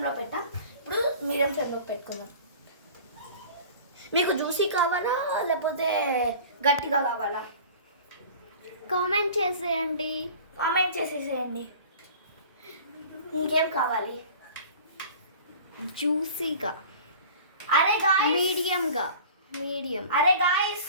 పెట్టాం. ఇప్పుడు మీడియం ఫ్లేమ్లో పెట్టుకుందాం. మీకు జ్యూసీ కావాలా లేకపోతే గట్టిగా కావాలా? కామెంట్ చేసేయండి. కామెంట్ చేసేసేయండి. ఇంకేం కావాలి? జ్యూసీగా. అరే గాయ్స్, మీడియం. అరే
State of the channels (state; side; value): inverted; both; correlation -0.42